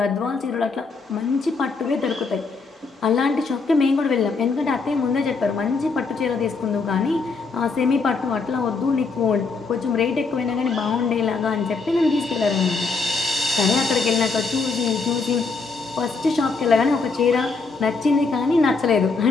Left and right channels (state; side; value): quieter; right; 4.3 dB